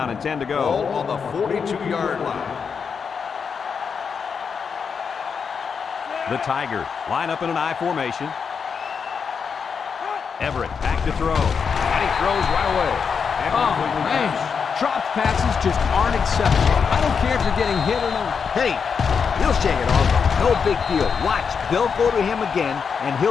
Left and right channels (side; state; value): right; quieter; 6.1 dB